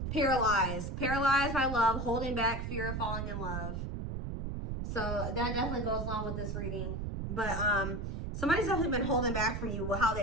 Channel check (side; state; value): right; noise; rumble, 4 dB below the sound